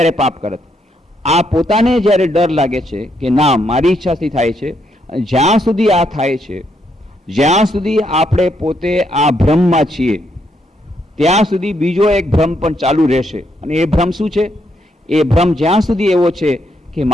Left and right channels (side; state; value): both; normal; correlation 0.76